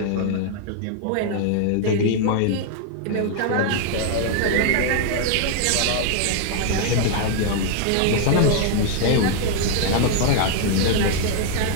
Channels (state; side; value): different; both; correlation 0.00